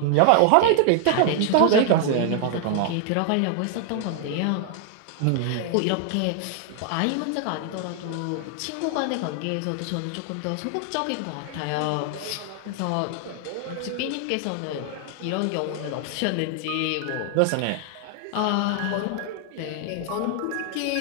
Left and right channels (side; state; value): both; different; correlation 0.00